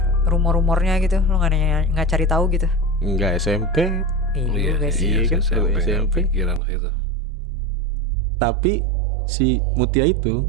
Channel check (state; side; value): drops out; left; at 6.6 s